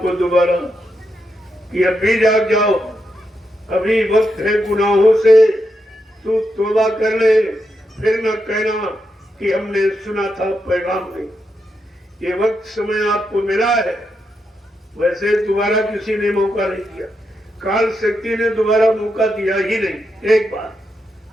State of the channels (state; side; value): normal; both; correlation 0.84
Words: दोबारा कि अभी जाग जाओ, अभी वक्त है गुनाहों से तू तौबा कर ले, फिर न कहना कि हमने सुना था पैगाम नहीं। ये वक्त समय आपको मिला है, वैसे दोबारा किसी ने मौका नहीं दिया, काल शक्ति ने दोबारा मौका दिया ही नहीं। एक बार